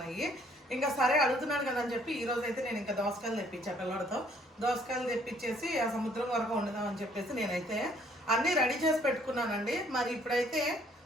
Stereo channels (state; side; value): normal; both; correlation 0.62